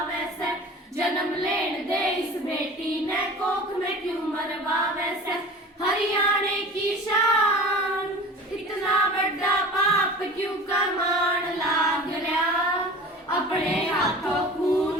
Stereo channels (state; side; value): normal; both; correlation 0.39